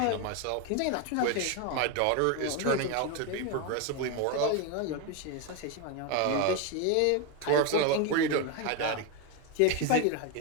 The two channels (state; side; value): different; both; correlation 0.02